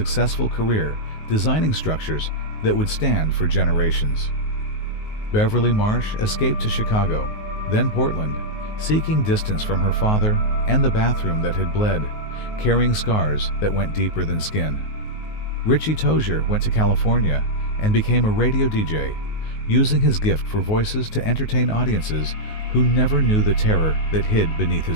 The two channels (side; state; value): right; late; 19 ms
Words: career designing structures that would stand for generations. Beverly Marsh escaped to Chicago, then Portland, seeking distance from her father and the bathroom that had bled, carrying scars that went deeper than skin. Richie Tozier went to California and became a radio DJ, using his gift for voices to entertain audiences who never knew the terror that hid beneath